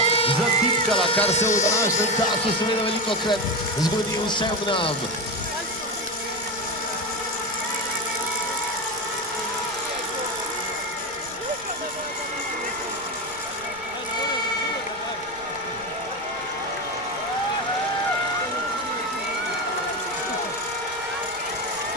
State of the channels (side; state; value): right; noise; rumble, 22 dB below the sound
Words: zatipkala, kar se v današnjem času seveda velikokrat zgodi vsem nam.